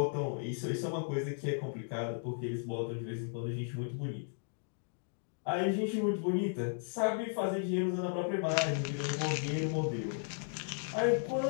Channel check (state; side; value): silent; right; digital silence